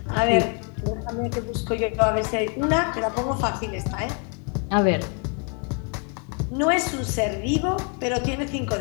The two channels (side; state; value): right; quieter; 38.0 dB